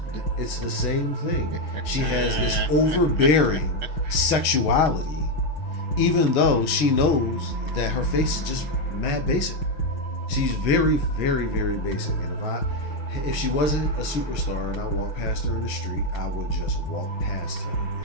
It's the same thing. She has this overbearing sexuality, even though she knows that her face is just mad basic. She's very, very, very basic. And if she wasn't a superstar and I walked past her in the street, I would just walk past her.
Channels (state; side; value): late; right; 6.3 ms